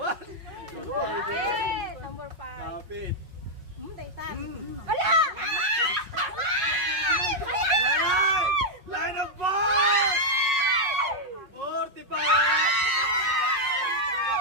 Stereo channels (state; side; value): late; left; 5.4 ms